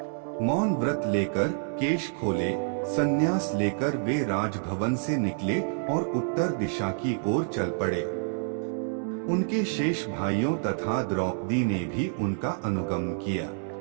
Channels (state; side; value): silent; left; digital silence